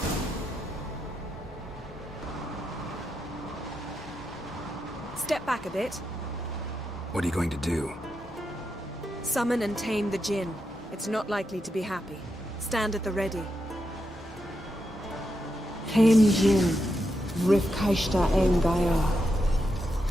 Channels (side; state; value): both; normal; correlation 0.85